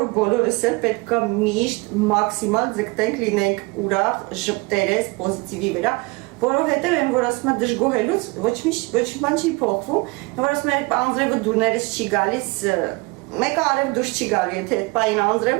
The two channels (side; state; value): left; quieter; 26.1 dB